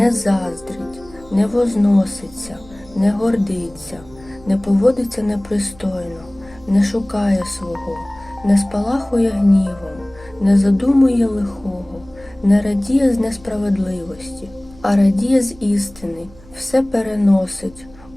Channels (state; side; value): noise; right; hum, 23 dB below the sound